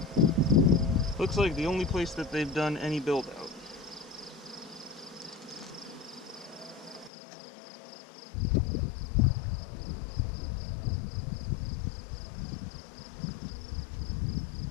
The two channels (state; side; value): drops out; right; at 7.1 s